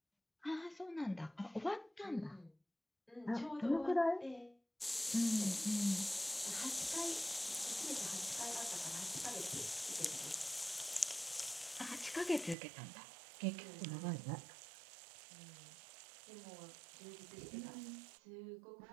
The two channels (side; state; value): left; drops out; at 12.6 s